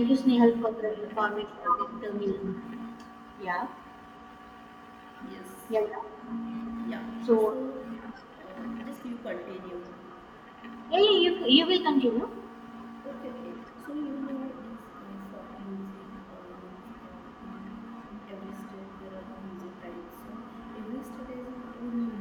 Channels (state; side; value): identical; both; correlation 1.00